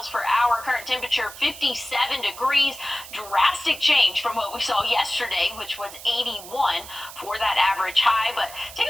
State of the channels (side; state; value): right; noise; hiss, 15 dB below the sound